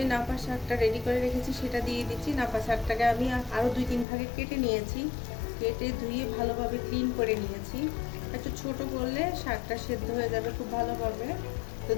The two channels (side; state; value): right; drops out; at 4.0 s